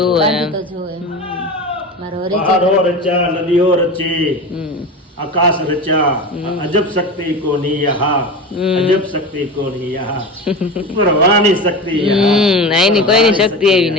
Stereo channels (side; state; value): both; normal; correlation 0.28